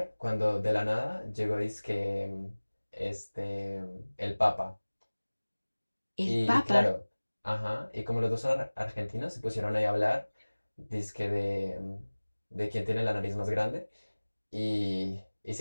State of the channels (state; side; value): inverted; both; correlation -1.00